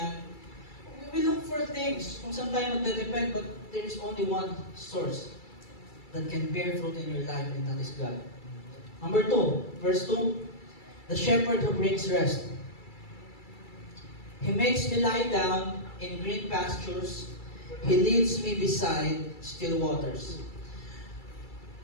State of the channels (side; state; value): right; late; 2.3 ms